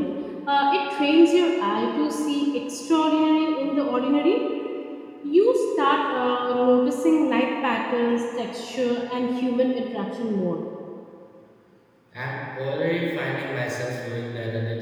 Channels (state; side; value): identical; both; correlation 1.00